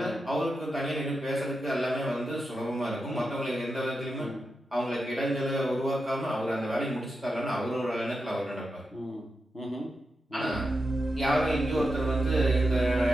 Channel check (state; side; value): normal; both; correlation 0.88